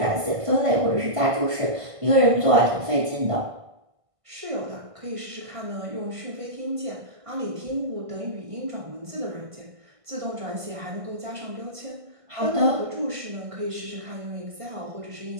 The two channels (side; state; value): left; late; 1.5 ms